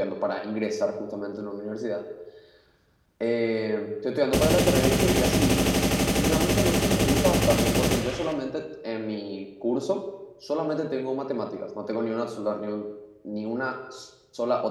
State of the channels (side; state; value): both; identical; correlation 1.00